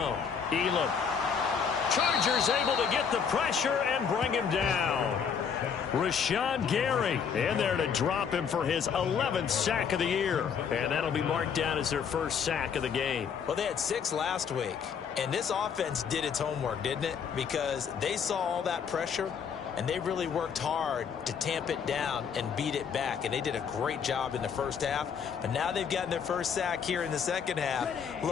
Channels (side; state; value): right; quieter; 6.9 dB